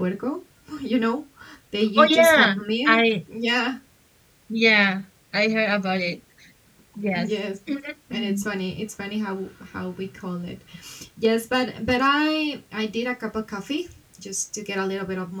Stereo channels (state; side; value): identical; both; correlation 1.00